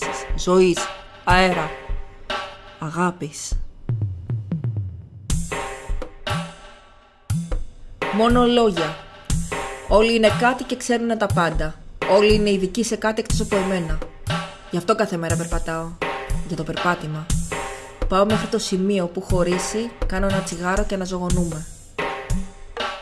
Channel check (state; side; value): identical; both; correlation 1.00